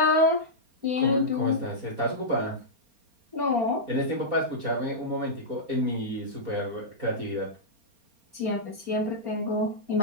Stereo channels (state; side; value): late; left; 4.3 ms